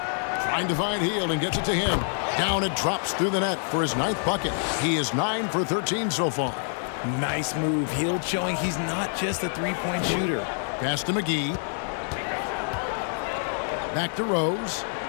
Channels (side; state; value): right; silent; 60 dB below the other